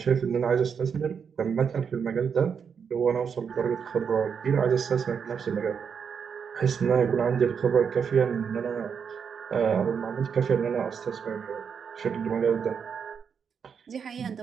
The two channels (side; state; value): left; quieter; 6.7 dB